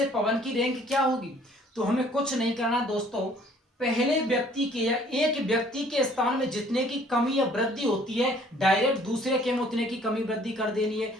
पवन की रैंक क्या होगी, तो हमें कुछ नहीं करना दोस्तों। पहले व्यक्ति के या एक व्यक्ति के स्थान में जितने की कमी या वृद्धि होती है, डायरेक्ट दूसरे के में उतने की कमी वृद्धि कर देनी है,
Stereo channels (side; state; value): both; normal; correlation 0.57